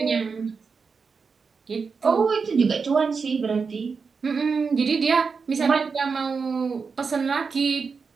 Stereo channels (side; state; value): left; quieter; 5.2 dB